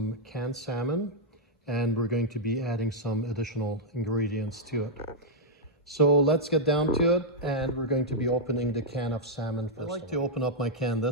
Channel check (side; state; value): both; normal; correlation -0.05